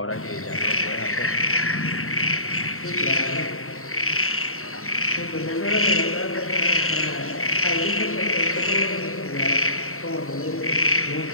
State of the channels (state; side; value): late; right; 0.63 ms